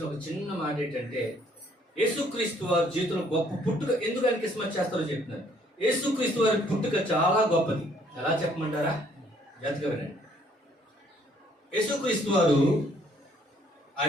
ఒక చిన్న మాట ఏంటంటే, యేసుక్రీస్తు వారి జీవితంలో గొప్ప పుట్టుక. ఎందుకు ఆయన క్రిస్మస్ చేస్తారో చెప్తున్నారు. యేసుక్రీస్తు వారి పుట్టుక చాలా గొప్పది. ఎలా చెప్పమంటారా? జాగ్రత్తగా వినండి. యేసుక్రీస్తు వారు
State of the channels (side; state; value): both; normal; correlation 0.64